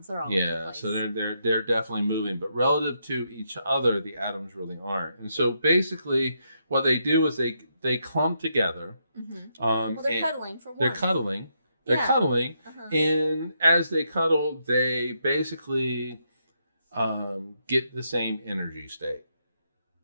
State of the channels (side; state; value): both; inverted; correlation -0.79